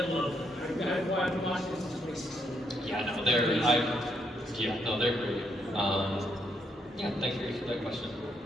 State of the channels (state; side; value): normal; both; correlation 0.76